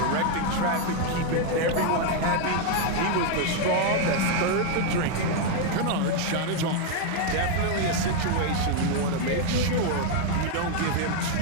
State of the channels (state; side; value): different; both; correlation 0.00